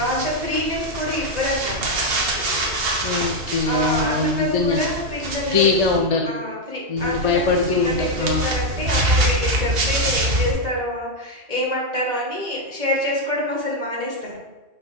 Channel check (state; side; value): late; left; 2.8 ms